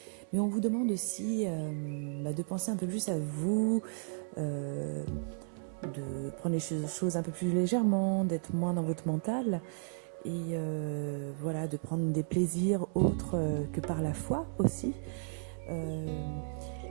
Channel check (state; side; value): silent; left; 55 dB below the other